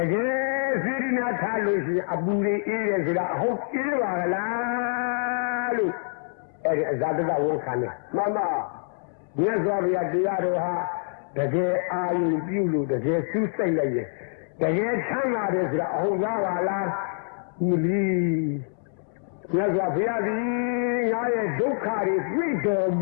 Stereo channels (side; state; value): right; silent; 61 dB below the other